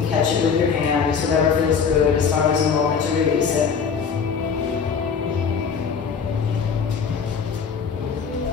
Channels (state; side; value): quieter; right; 6.2 dB